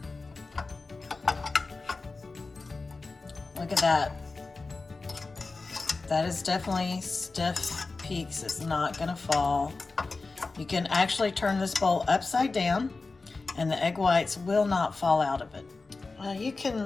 Look at that. That is definitely stiff peaks. It's not gonna fall. You can actually turn this bowl upside down and the egg whites will not fall out of it. You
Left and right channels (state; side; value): quieter; right; 3.8 dB